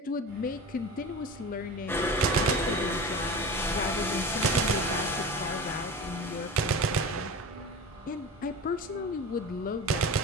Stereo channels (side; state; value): both; normal; correlation 0.31